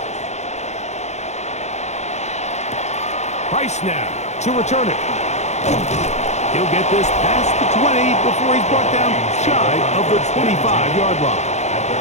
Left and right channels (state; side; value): late; right; 0.33 ms